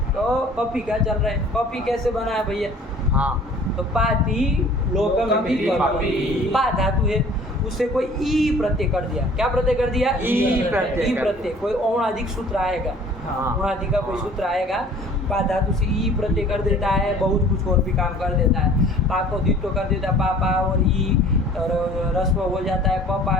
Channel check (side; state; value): both; normal; correlation 0.50